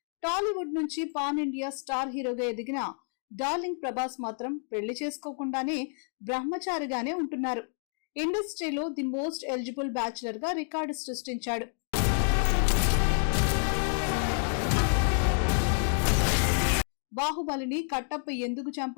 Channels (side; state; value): right; silent; 58 dB below the other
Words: టాలీవుడ్ నుంచి పాన్ ఇండియా స్టార్ హీరోగా ఎదిగిన డార్లింగ్ ప్రభాస్ మాత్రం పెళ్లి చేసుకోకుండానే బ్రహ్మచారిగానే ఉంటున్నారు. ఇండస్ట్రీలో ది మోస్ట్ ఎలిజిబుల్ బ్యాచులర్ గా రికార్డు సృష్టించాడు. బాహుబలిని కట్టప్ప ఎందుకు